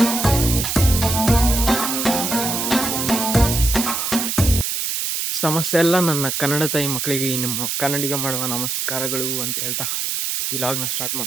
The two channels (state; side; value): noise; right; hiss, 1 dB below the sound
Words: ಸಮಸ್ಯೆ ಎಲ್ಲ ನನ್ನ ಕನ್ನಡ ತಾಯಿ ಮಕ್ಕಳಿಗೆ ನಿಮ್ಮ ಕನ್ನಡಿಗ ಮಾಡುವ ನಮಸ್ಕಾರಗಳು ಅಂತ ಹೇಳ್ತಾ ಈ ಲಾಗ್ನ ಸ್ಟಾರ್ಟ್